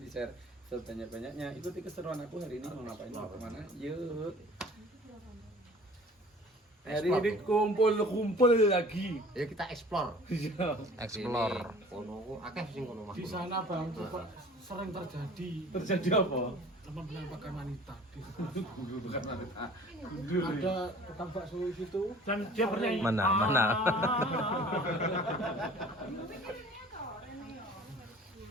share sebanyak-banyaknya. Ikuti keseruan aku hari ini mau ngapain, mau kemana? Yuk. Hari ini kumpul lagi. Ya kita explore. Explore. Kono akeh sing kono Mas. Di sana Bang, sering terjadi Terjadi apa? penampakan wanita. Bukan wanita. Ada tukang bakso di situ dan dia bernyanyi. Mana?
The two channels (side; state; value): both; normal; correlation 0.47